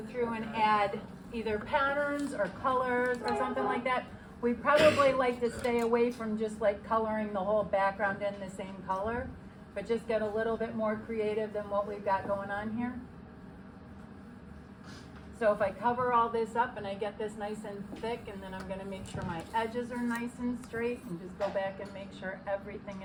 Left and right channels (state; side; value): identical; both; correlation 1.00